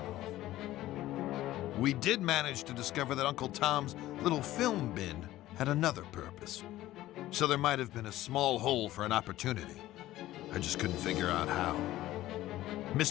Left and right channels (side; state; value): right; quieter; 15.3 dB